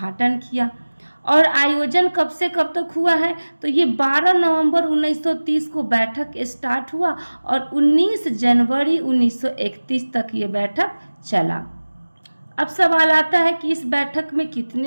किया। और आयोजन कब से कब तक हुआ है? तो ये 12 नवंबर 1930 को बैठक स्टार्ट हुआ और 19 जनवरी 1931 तक ये बैठक चला। अब सवाल आता है कि इस बैठक में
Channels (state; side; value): inverted; both; correlation -1.00